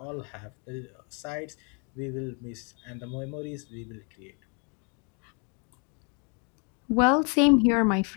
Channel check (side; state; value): right; quieter; 36.8 dB